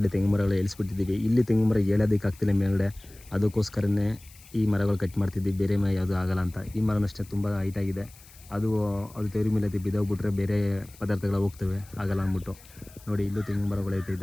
ತೆಂಗು ಮರಗಳು ಏಳಿಸ್ಬಿಟ್ಟಿದ್ದೀವಿ. ಇಲ್ಲಿ ತೆಂಗು ಮರ ಏಳೋದಕ್ಕಾಗ್ತಿಲ್ಲ ಮೇಲ್ಗಡೆ. ಅದಕ್ಕೋಸ್ಕರನೇ ಈ ಮರಗಳು ಕಟ್ ಮಾಡ್ತಿದ್ದೀವಿ. ಬೇರೆ ಮರ ಯಾವುದೂ ಆಗಲ್ಲ ಅಂತ. ಈ ಮರನಷ್ಟೇ ತುಂಬ ಹೈಟಾಗಿದೆ. ಅದು ತೆವ್ರ ಮೇಲೆ ಬಿದ್ದೋಗ್ಬಿಟ್ರೆ ಬೇರೆ ಪದಾರ್ಥಗಳು ಹೋಗ್ತವೆ, ಆಗಲ್ಲ ಅಂದ್ಬಿಟ್ಟು. ನೋಡಿ, ಇಲ್ಲೂ ತೆಂಗು ಮರಗಳೈತೆ,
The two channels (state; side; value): noise; left; hiss, 23 dB below the sound